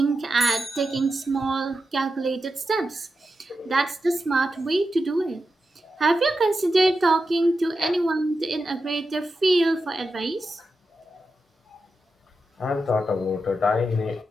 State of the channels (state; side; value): normal; both; correlation 0.89